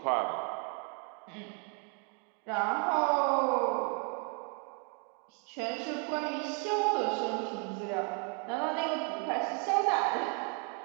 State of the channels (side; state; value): left; quieter; 37.6 dB